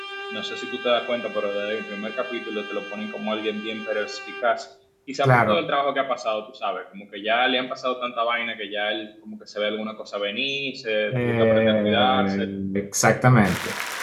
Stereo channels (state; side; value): identical; both; correlation 1.00